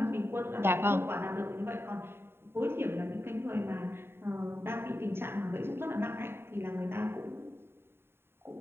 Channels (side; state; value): left; late; 0.11 ms